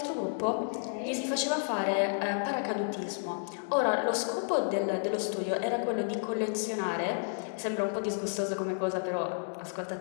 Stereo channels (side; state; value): right; silent; digital silence